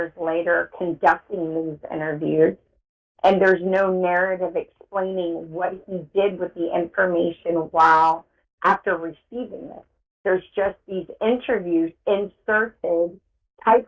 later conducting these interviews. And there's no narrative explaining what he did with the information while after receiving it. There's just these interviews inserted,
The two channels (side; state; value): both; identical; correlation 1.00